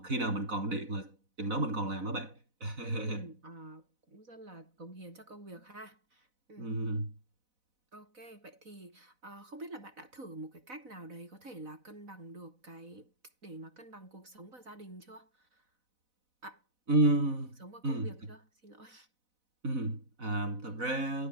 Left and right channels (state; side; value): late; left; 4.0 ms